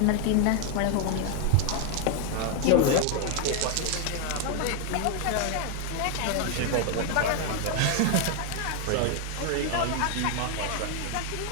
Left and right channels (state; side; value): different; both; correlation 0.00